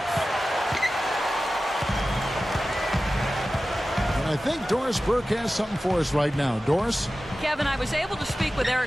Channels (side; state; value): both; normal; correlation 0.95